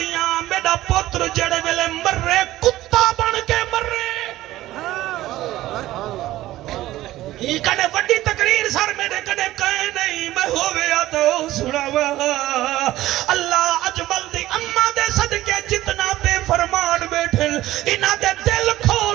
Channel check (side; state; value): left; quieter; 15.6 dB